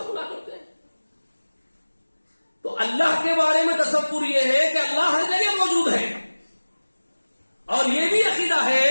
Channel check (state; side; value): inverted; both; correlation -1.00